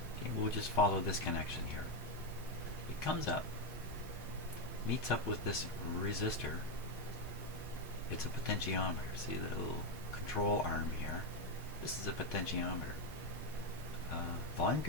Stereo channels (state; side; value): normal; both; correlation 0.06